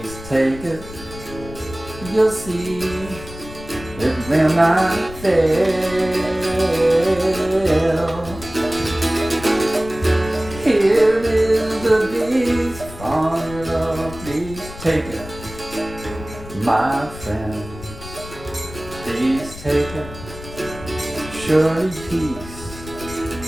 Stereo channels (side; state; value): left; noise; rumble, 14 dB below the sound